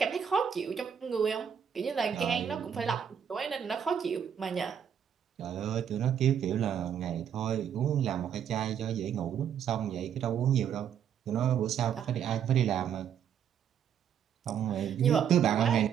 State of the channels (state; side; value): quieter; left; 8.5 dB